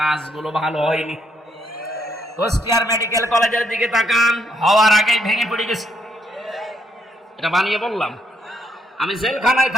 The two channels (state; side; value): normal; both; correlation 0.73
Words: ভালো হয়নি। কুষ্টিয়ার মেডিকেল কলেজের দিকে তাকান, হওয়ার আগেই ভেঙে পড়ে গেছে। এটা বানিয়ে বললাম। আমি জেলখানায়